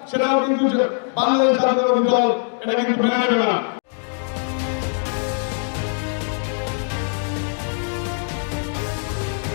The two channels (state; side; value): silent; right; 64 dB below the other